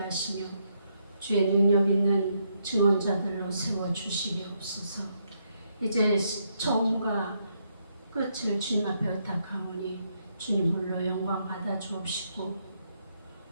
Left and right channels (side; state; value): both; inverted; correlation -0.77